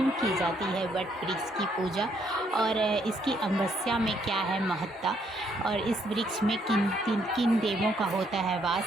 की जाती है वट वृक्ष की पूजा और इसकी अमावस्या में क्या है महत्ता, और इस वृक्ष में किन देवों का होता है वास।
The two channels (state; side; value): normal; both; correlation 0.71